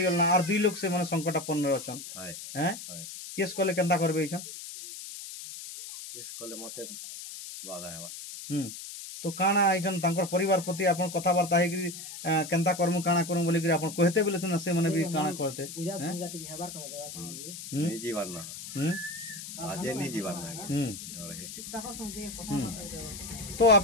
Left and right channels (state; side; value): noise; left; hiss, 11 dB below the sound